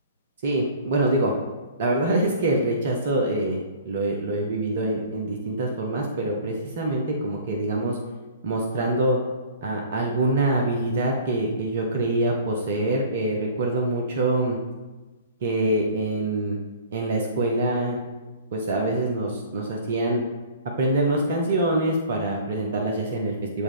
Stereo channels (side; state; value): both; inverted; correlation -0.47